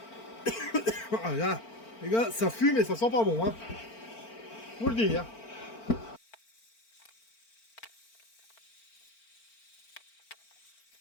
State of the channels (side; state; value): right; late; 4.4 ms